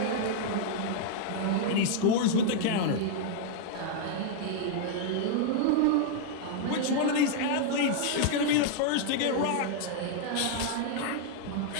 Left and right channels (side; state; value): both; different; correlation -0.01